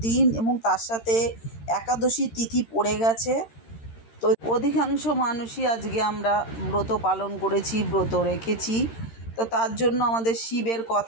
দিন এবং তার সাথে একাদশী তিথি পড়ে গেছে। তো অধিকাংশ মানুষই আজকে আমরা ব্রত পালন করেছি, ব্রত রেখেছি। তো তার জন্য আমাদের শিবের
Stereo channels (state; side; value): late; right; 13 ms